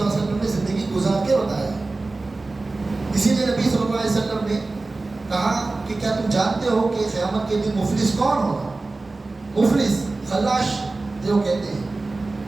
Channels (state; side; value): quieter; left; 3.4 dB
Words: اللہ علیہ وسلم نے زندگی گزار کے بتایا ہے. کہا کہ کیا تم جانتے ہو کہ قیامت کے دن مفلس کون ہوگا؟ مفلس خلاش جو کہتے ہیں،